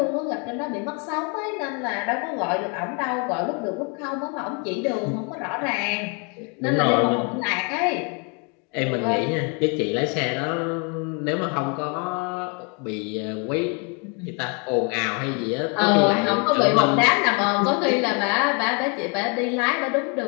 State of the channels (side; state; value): right; quieter; 35.1 dB